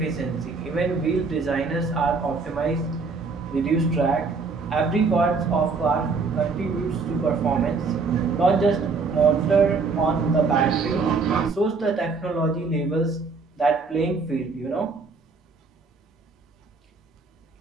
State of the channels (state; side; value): quieter; left; 4.4 dB